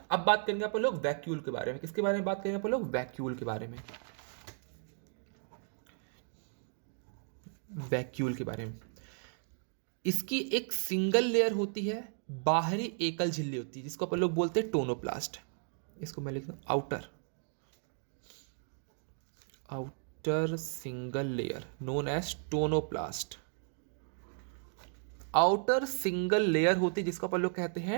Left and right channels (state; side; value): silent; left; 55 dB below the other